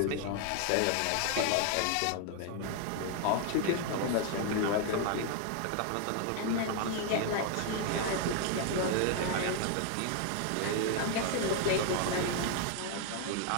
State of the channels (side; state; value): both; different; correlation 0.00